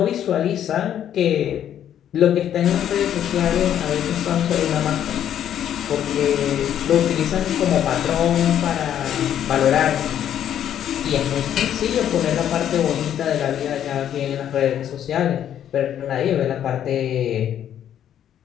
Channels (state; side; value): quieter; right; 10.2 dB